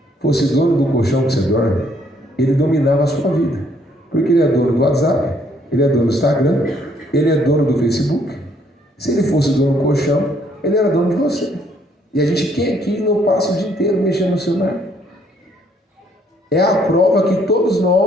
fosse dono do colchão que você dorme, ele dominava a sua vida. Porque ele é dono do WhatsApp, ele é dono do Instagram, ele é dono do Facebook. Se ele fosse dono do colchão, ele era dono de você. E a gente, quem aqui não passa o dia inteiro mexendo no celular? É a prova que todos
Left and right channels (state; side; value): normal; both; correlation 0.66